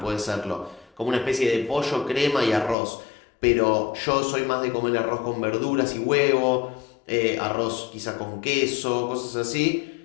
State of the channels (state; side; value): drops out; right; at 2.8 s